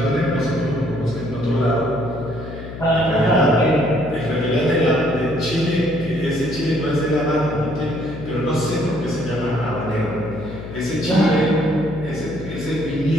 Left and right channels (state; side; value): noise; left; hum, 11 dB below the sound